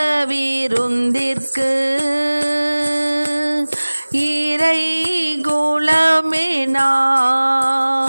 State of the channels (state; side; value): inverted; both; correlation -1.00